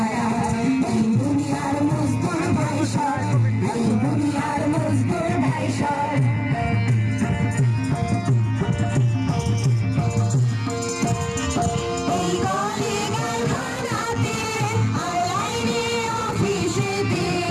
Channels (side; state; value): both; identical; correlation 1.00